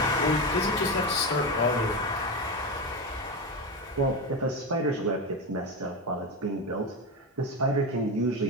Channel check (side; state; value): both; normal; correlation 0.16